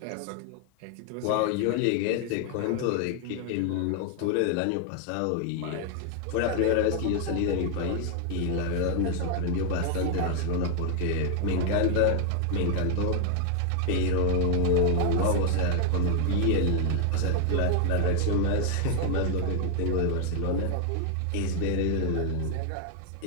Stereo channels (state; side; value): different; both; correlation 0.00